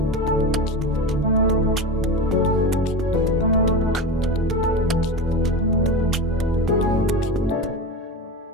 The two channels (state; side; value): normal; both; correlation 0.25